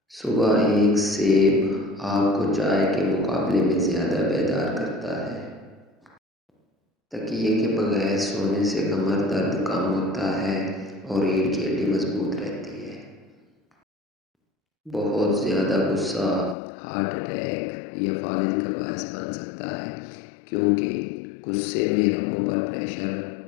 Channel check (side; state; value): right; drops out; at 16.6 s